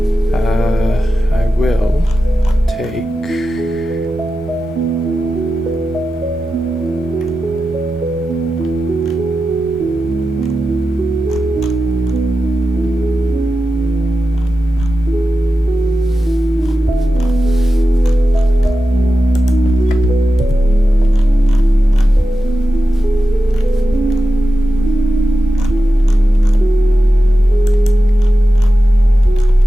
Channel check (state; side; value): normal; both; correlation 0.92